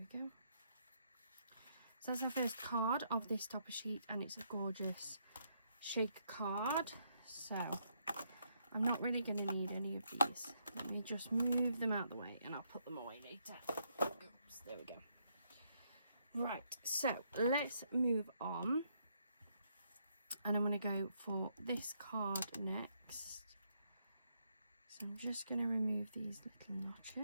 go. So that's our first card of this topper sheet, and it's a gorgeous shaker card. So I'm not really going to need any of these. Let me just move them out of the way and I'll put them away later. Oops, there we go. Right, so let's move on. And I'm going to go for this card next. So I'm just going to remove these little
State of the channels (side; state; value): both; inverted; correlation -0.74